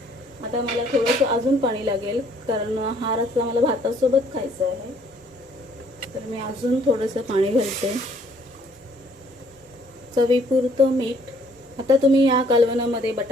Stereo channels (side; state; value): both; normal; correlation 0.62